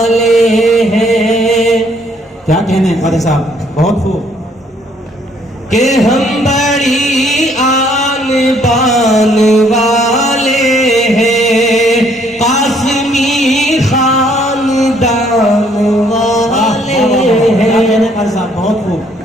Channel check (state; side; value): normal; both; correlation 0.65